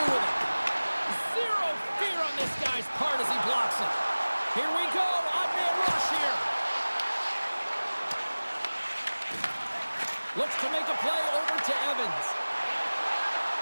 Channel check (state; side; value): inverted; both; correlation -1.00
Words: with it. Zero fear on this guy's part as he blocks it. Here we go. Odd man rush here. Looks to make a play over to Evans.